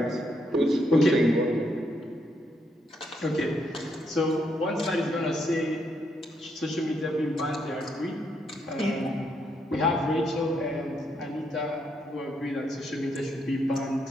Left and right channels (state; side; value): normal; both; correlation 0.77